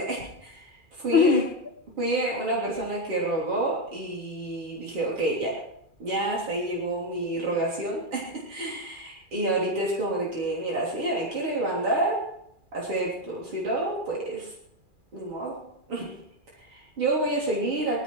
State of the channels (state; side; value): late; left; 2.4 ms